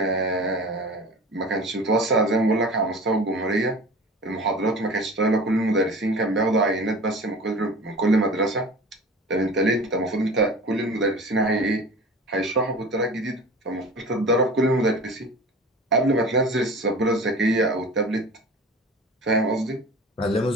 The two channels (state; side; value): normal; both; correlation 0.38